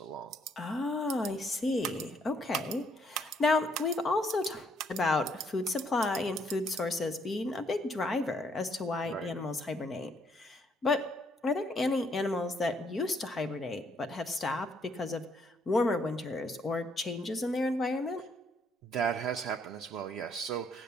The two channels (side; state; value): both; normal; correlation 0.69